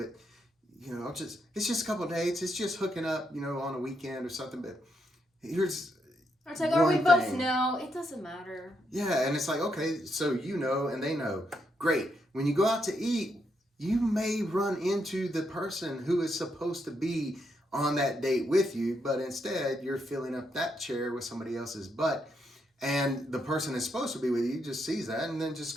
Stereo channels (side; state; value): both; normal; correlation 0.79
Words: it's just a couple of dates. It's just hooking up, on a weekend or something. But here's, it's like, are we both know? It doesn't matter. Yeah. And it's like, okay, so and they know. Great. When you go out to eat, you may run into the person who is supposed to be on that date with you, but instead you're filling up that chair with somebody else's butt, and the person that's supposed to be with you just sees that and then just